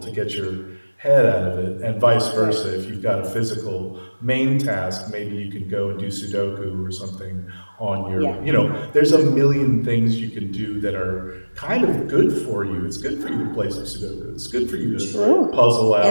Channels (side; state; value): both; inverted; correlation -1.00